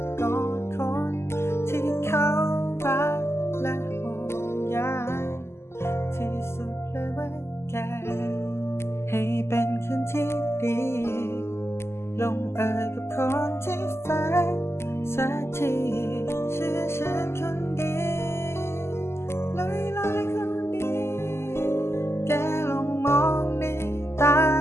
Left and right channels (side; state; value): right; late; 0.12 ms